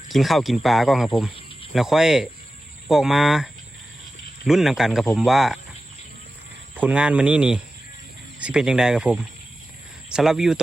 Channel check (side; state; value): both; normal; correlation 0.94